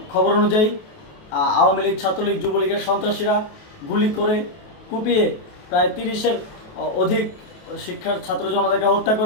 খবর অনুযায়ী আওয়ামী লীগ, ছাত্রলীগ, যুবলীগের সন্ত্রাসীরা গুলি করে কুপিয়ে প্রায় 30-এর অধিক শিক্ষার ছাত্র জনতাকে হত্যা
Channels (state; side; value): late; right; 28 ms